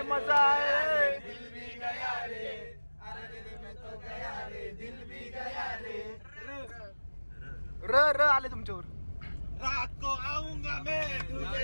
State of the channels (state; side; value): inverted; both; correlation -1.00